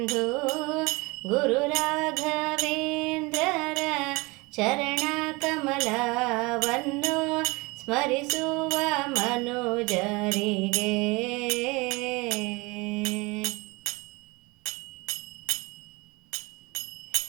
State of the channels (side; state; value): left; quieter; 25.1 dB